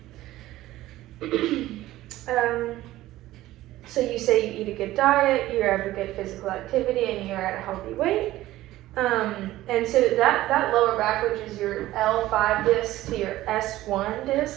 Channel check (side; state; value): left; quieter; 15.8 dB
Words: So you say you eat a good diet, you have a good physical activity, and you're at a healthy weight. And so that lower back, which is your L5 disc to your S1